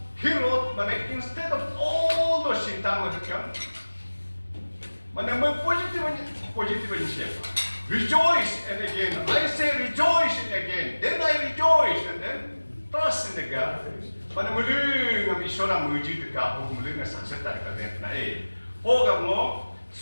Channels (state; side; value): inverted; both; correlation -1.00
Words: he wrote mana instead of all those shintama to come. Mana move positive in shape. Rejoice and again. I say rejoice and again. Then I rejoice and then trust in the God. Mana muli ngam isora muji dekat muli ngam sukses dari kalian na mo